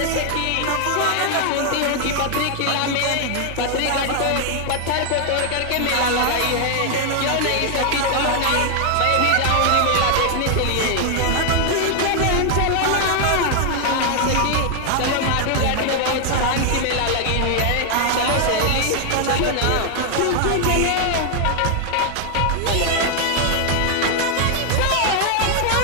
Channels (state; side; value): different; both; correlation 0.00